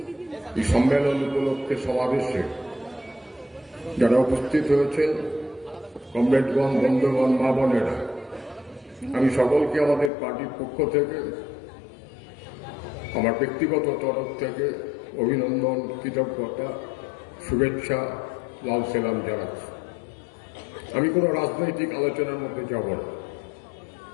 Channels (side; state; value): right; drops out; at 10.1 s